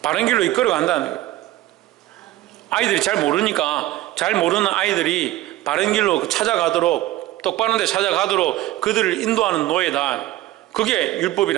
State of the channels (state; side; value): quieter; left; 15.7 dB